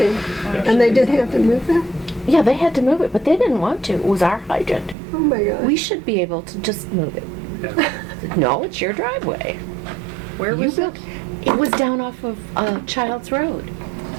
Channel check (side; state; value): left; drops out; at 5.0 s